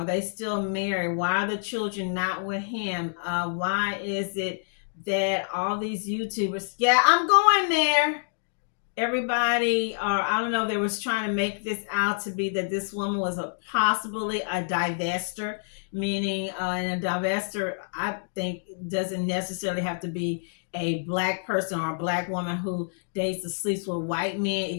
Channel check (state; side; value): silent; right; digital silence